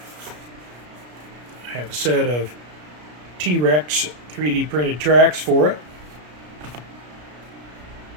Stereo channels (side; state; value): left; late; 33 ms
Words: I have a set of TRex 3D printed tracks for it.